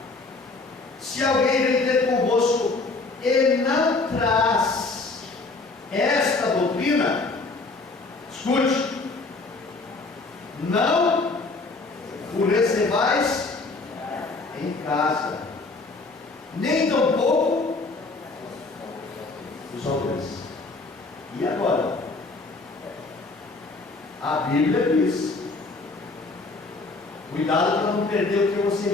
Se alguém vem ter convosco e não traz esta doutrina, escute: não o recebais em casa, nem tampouco os aldeões. E agora? A Bíblia diz: cuidado para não perder o que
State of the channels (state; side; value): quieter; right; 3.6 dB